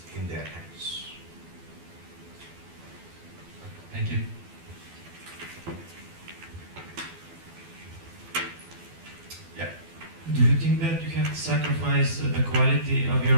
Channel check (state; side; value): late; left; 12 ms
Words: in their hands. Thank you. Yeah. Do you think that you have to sacrifice the quality of your